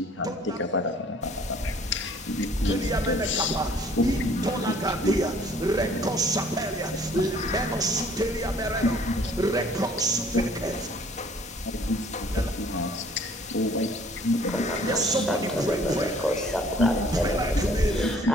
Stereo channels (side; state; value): both; normal; correlation 0.56